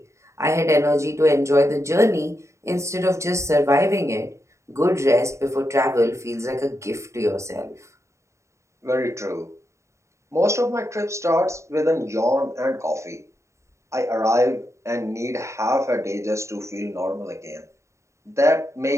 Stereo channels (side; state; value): left; late; 0.14 ms